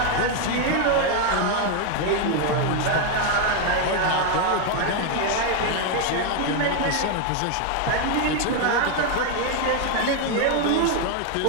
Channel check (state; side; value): different; both; correlation 0.01